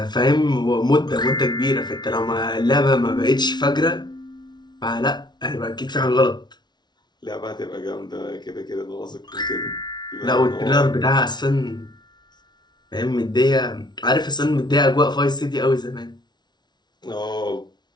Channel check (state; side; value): late; right; 0.20 ms